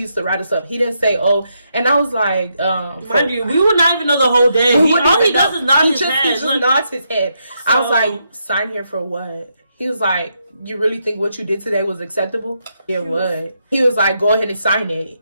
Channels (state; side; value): inverted; both; correlation -0.80